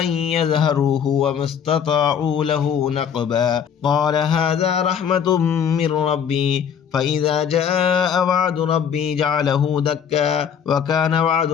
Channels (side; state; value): right; quieter; 7.9 dB